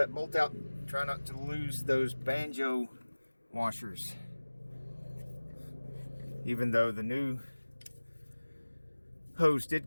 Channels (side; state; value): both; inverted; correlation -1.00